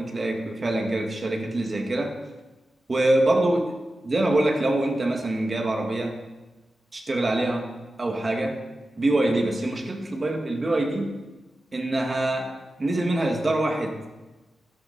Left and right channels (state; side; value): normal; both; correlation 0.93